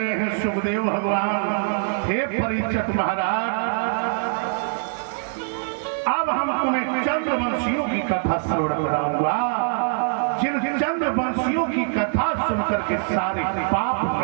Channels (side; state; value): left; silent; 63 dB below the other